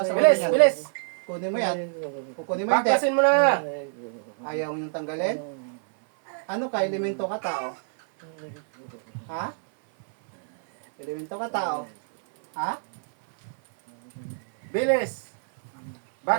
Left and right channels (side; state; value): left; silent; 57 dB below the other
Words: ulo Bilis, niyan? bilis. Kunin mo yan. Kukunin mo hindi. Baklasin mo na. Ayaw mo yung tanggalin? Ano ka? Elemento ka tao? Ha? Elemento ka tao? Ha? Bilis.